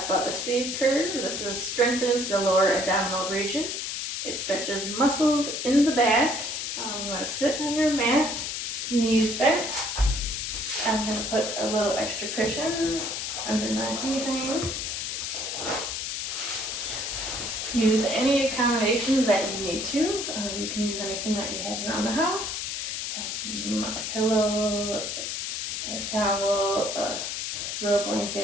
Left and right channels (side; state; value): left; noise; hiss, 3 dB below the sound